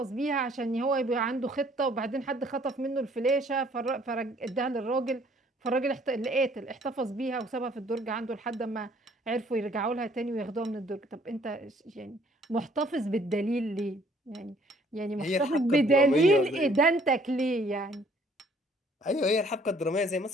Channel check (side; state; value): both; normal; correlation 0.61